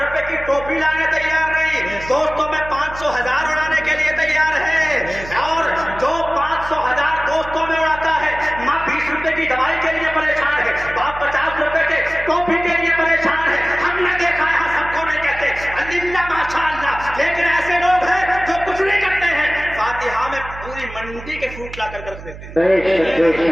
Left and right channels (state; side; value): noise; right; hum, 14 dB below the sound